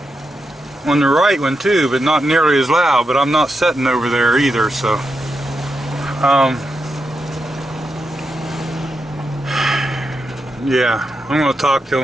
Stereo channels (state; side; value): normal; both; correlation 0.86